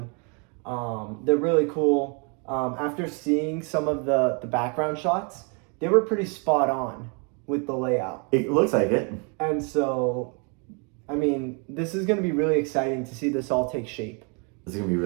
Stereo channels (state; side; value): quieter; left; 35.6 dB